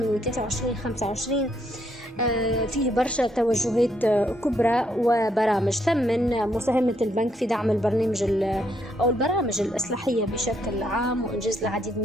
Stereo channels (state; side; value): normal; both; correlation 0.73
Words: 23-25 فيه برشا توجهات كبرى وبرامج. ثمن مساهمة البنك في دعم أو البرامج الإصلاحية بشكل عام وإنجاز العديد من